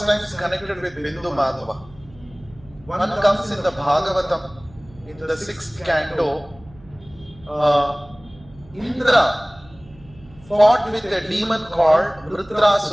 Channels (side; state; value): right; noise; hum, 23 dB below the sound